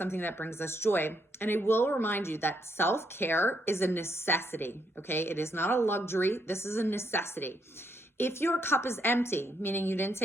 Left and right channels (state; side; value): normal; both; correlation 0.75